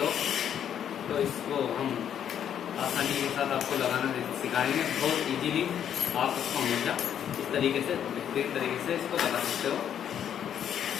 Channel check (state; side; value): quieter; right; 9.4 dB